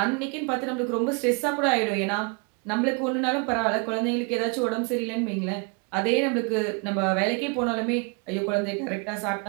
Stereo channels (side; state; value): left; quieter; 34.5 dB